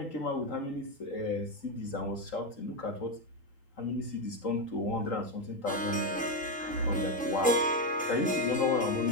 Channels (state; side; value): normal; both; correlation 0.08